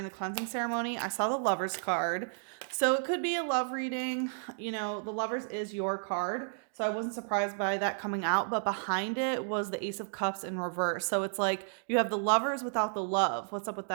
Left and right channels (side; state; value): left; silent; digital silence